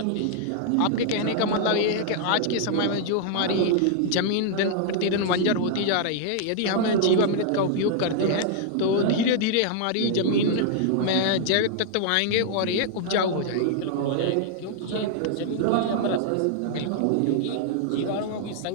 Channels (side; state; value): both; different; correlation -0.01